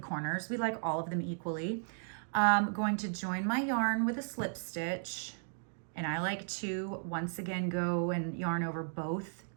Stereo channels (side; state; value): left; silent; digital silence